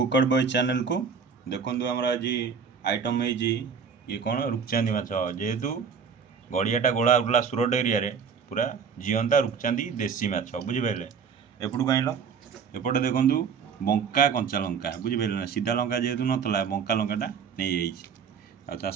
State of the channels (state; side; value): quieter; left; 6.3 dB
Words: बॉय चैनल को देखो आम आज आइटम है ये कौन रूपचांदी माछ जेहेतु गड़ियाटा गोला उठला सुरट एरिया पूरा जीवंता रूपचांदी देसी माछ बुझिपारे एपटू आइल एपटे देखु बंका कंचा लंका बुझिपारे ना सीधा लंका जेहेतु नाला बंका लंकाटा नहीं आ